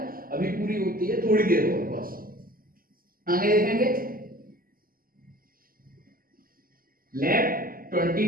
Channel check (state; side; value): late; left; 0.42 ms